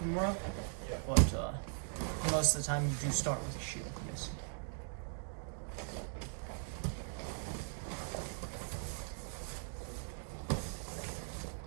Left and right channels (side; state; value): left; silent; 51 dB below the other